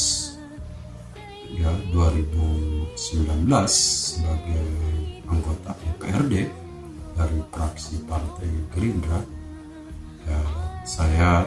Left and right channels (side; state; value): both; identical; correlation 1.00